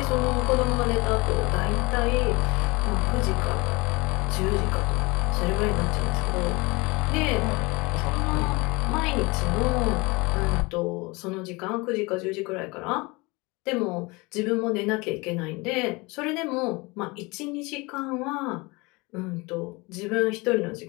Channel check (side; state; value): right; quieter; 25.2 dB